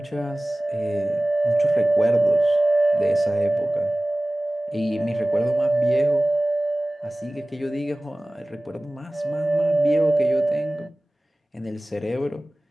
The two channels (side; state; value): both; normal; correlation 0.98